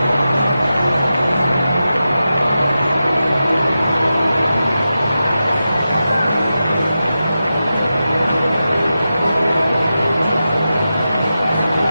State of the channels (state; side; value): inverted; both; correlation -0.91